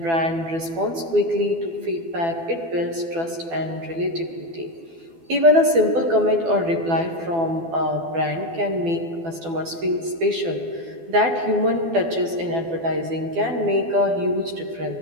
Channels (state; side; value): late; left; 12 ms